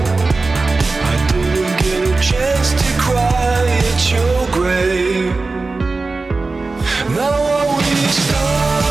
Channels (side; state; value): left; quieter; 3.7 dB